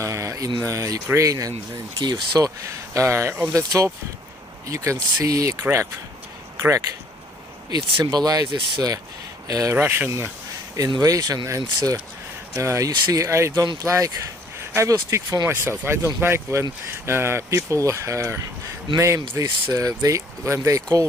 in Ukraine and in Kyiv. So on the top you can see a crack. It symbolizes Russian invasion, and you see, I will speak for myself. I don't like when people name this, when they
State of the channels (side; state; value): both; normal; correlation 0.60